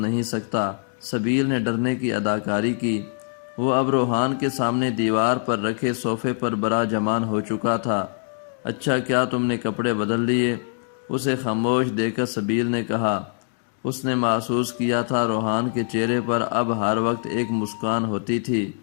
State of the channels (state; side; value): silent; right; digital silence